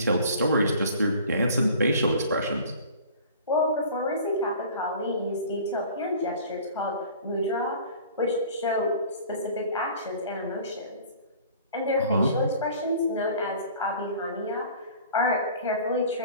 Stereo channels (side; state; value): both; inverted; correlation -0.45